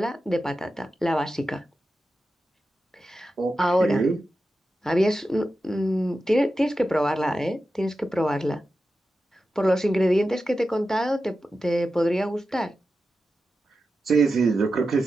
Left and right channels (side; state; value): both; normal; correlation 0.92